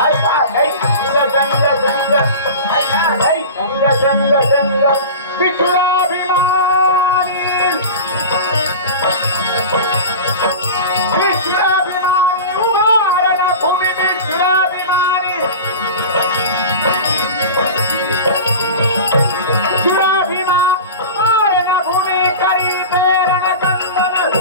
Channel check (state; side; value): inverted; both; correlation -0.32